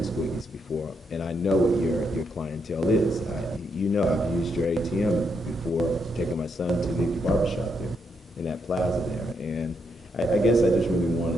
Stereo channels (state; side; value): normal; both; correlation 0.78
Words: Squiggy's before, and I know what your clientele is. I've used your ATM before, taking my son to the barbershop there, in that plaza there, and I guess I just really